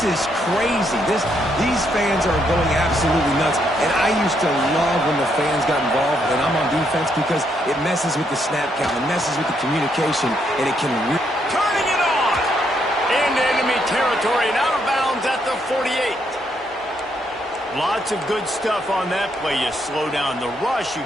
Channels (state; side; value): normal; both; correlation 0.75